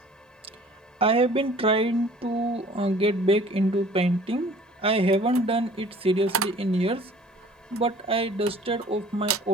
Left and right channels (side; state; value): both; normal; correlation 0.50